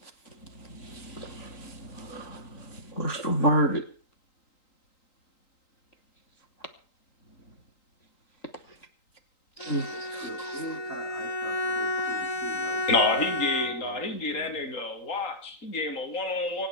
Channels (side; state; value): right; late; 3.8 ms